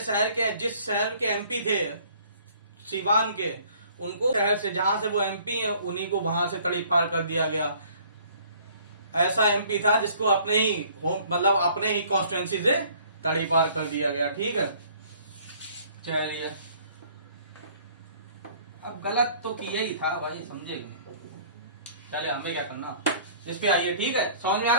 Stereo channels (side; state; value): both; inverted; correlation -0.55